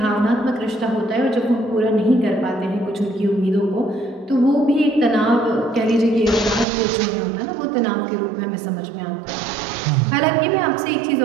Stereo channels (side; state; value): left; drops out; at 6.7 s